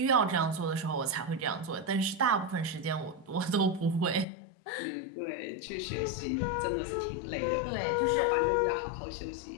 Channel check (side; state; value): right; drops out; at 4.2 s